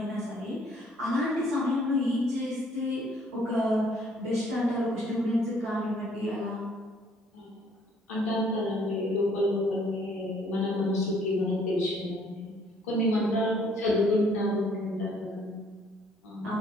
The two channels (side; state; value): both; normal; correlation 0.62